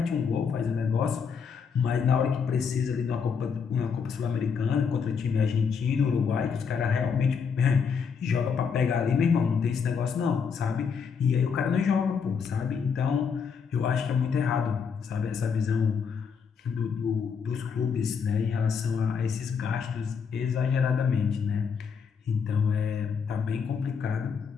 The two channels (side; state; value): right; quieter; 6.2 dB